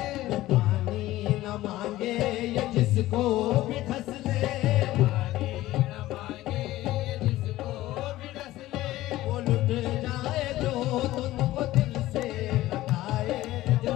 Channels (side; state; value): right; quieter; 16.1 dB